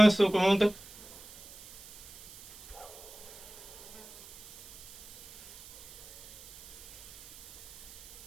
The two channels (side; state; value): right; noise; hiss, 19 dB below the sound